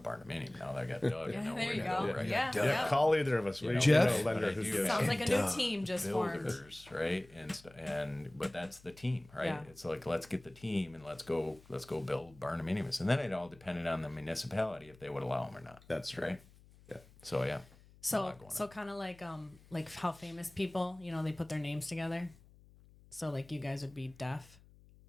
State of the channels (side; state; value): left; noise; hum, 25 dB below the sound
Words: Now that I got Doug, I know there where you to go. go, right? Yeah. Call either of us. We Jeff? know a lender But I who do gives. Sounds like a new team just formed. Builders, right? But that's the team, right? Yeah. It's like, let's get the team and let's go build barndominiums, and then it all depended on the municipality if they would allow them or not. That's right. Yeah. So yeah. So kind of like how famous people, they put their names together. So like you guys would be deaf.